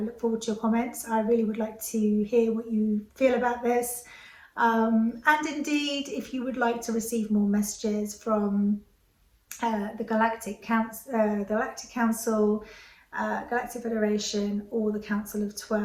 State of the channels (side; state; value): both; identical; correlation 1.00